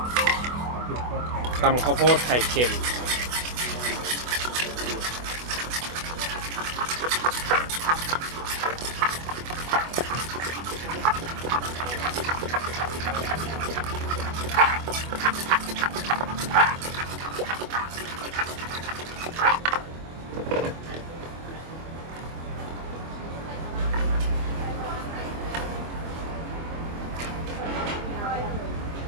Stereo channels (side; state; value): left; late; 24 ms